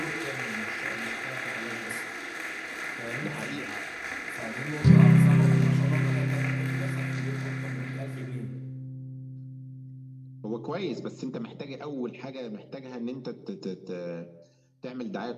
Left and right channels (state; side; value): identical; both; correlation 1.00